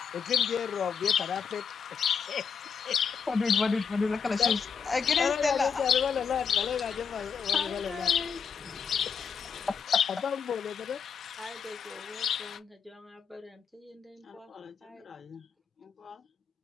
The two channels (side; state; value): right; quieter; 6.5 dB